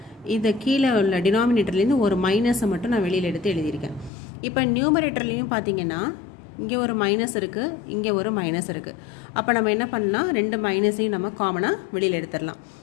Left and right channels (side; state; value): right; drops out; at 4.1 s